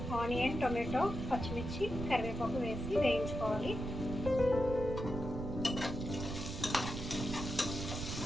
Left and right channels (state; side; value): noise; right; rumble, 5 dB below the sound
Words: ఆనియన్, టొమాటో, పచ్చిమిర్చి, కరివేపాకు వేసి వేయించుకోవాలి.